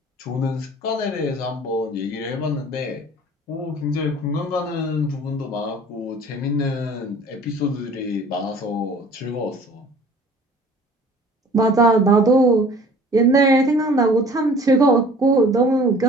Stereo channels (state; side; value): normal; both; correlation 0.49